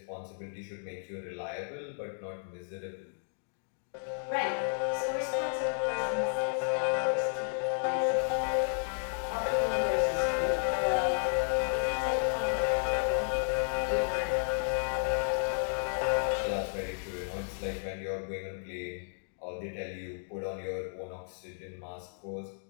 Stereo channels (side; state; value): right; silent; digital silence